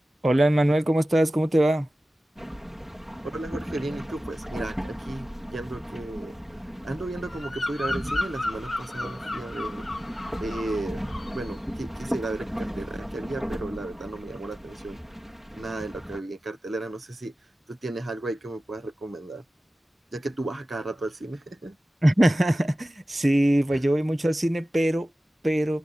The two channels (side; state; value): both; normal; correlation 0.95